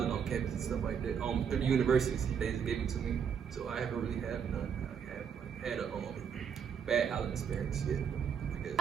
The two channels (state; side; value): quieter; left; 7.4 dB